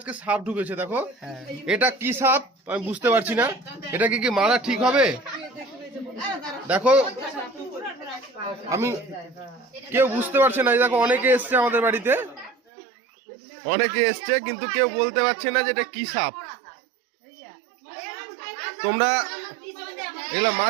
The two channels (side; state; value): left; drops out; at 12.6 s